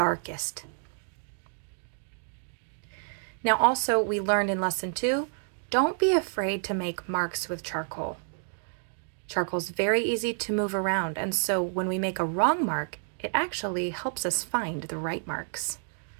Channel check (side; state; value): left; silent; 58 dB below the other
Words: Now also, we learned in lesson 2, don't be afraid to make marks with charcoal. Charcoal is very easy to move around, and so when we make a wrong mark, it actually helps us find the right marks.